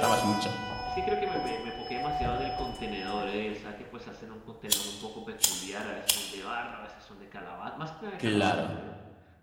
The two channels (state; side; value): identical; both; correlation 1.00